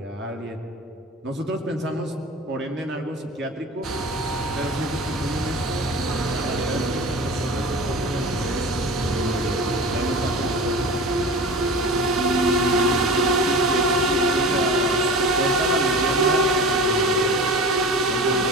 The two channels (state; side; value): normal; both; correlation 0.35